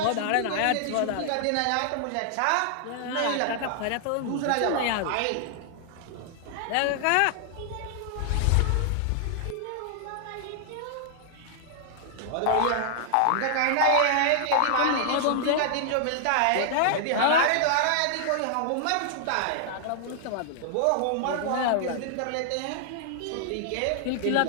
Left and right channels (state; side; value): different; both; correlation 0.00